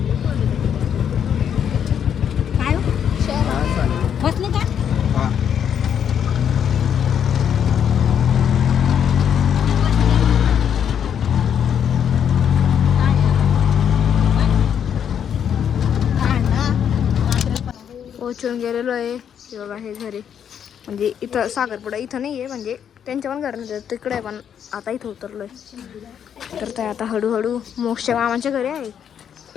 काय बसले का. पोचून गेलेलो आहे. हे बघा हे घरी, म्हणजे इथं साखरपुडा इथं नाही आहे, म्हणजे त्यांच्या पण घर नाही तिकडे आहे. पण आता इथं उतरलोय. तर ते आता हळूहळू मोक्षच्या मामाच्या घरी आहे.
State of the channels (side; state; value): right; quieter; 8.5 dB